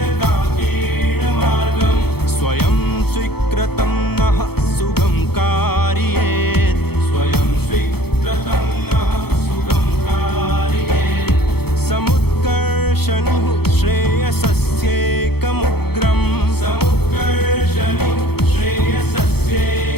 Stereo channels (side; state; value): right; late; 0.96 ms